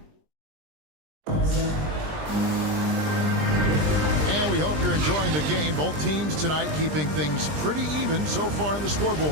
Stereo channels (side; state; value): left; late; 20 ms